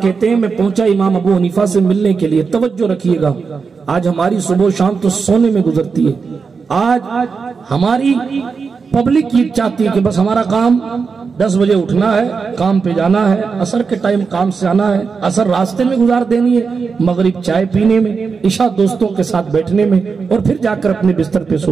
کہتے ہیں میں پہنچا امام ابو حنیفہ سے ملنے کے لیے۔ توجہ رکھیے گا، آج ہماری صبح و شام تو سونے میں گزرتی ہے۔ آج ہماری پبلک یہ چاہتی ہے کہ بس ہمارا کام 10 بجے اٹھنا ہے، کام پہ جانا ہے، عصر کے ٹائم کام سے آنا ہے، عصر راستے میں گزار دینی ہے، مغرب چائے پینے میں، عشاء دوستوں کے ساتھ بیٹھنے میں، اور پھر جا کر اپنے بستر پہ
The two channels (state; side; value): quieter; left; 5.2 dB